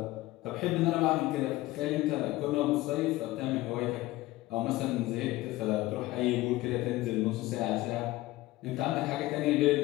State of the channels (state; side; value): quieter; right; 18.1 dB